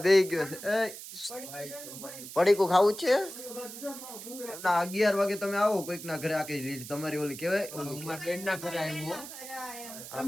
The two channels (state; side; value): noise; right; hiss, 12 dB below the sound